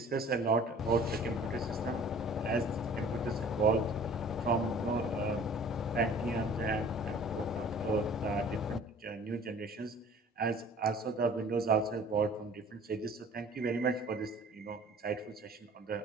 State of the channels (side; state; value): both; normal; correlation 0.49